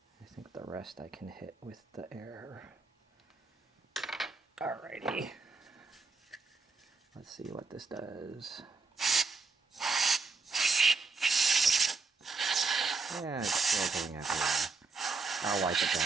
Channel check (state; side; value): quieter; left; 4.3 dB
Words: I think the rest I can hit with the air. Alrighty. Let's see what this does. Yeah, it's still going everywhere. I'll wipe it